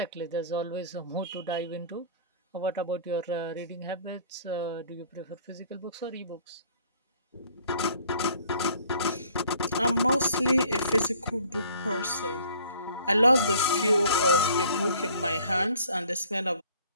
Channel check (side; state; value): both; inverted; correlation -0.55